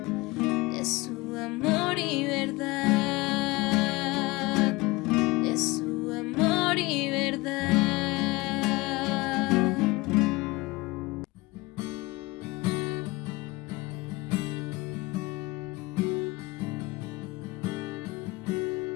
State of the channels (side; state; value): right; quieter; 22.2 dB